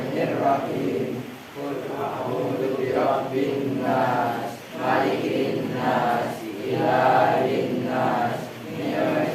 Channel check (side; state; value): both; identical; correlation 1.00